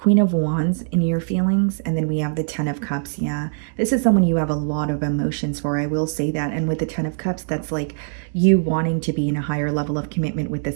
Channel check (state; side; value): silent; left; 64 dB below the other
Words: of Wands in your feelings, and then we have the Ten of Cups. Yeah, this is someone you have a lot of emotions for, I will say that. And with the Ten of Cups, that's like you wanting to be in a higher level of commitment with